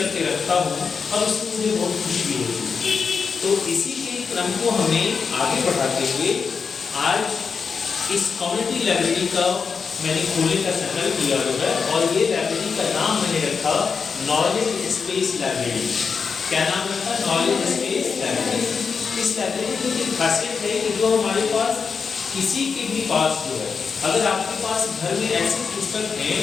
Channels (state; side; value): quieter; right; 5.6 dB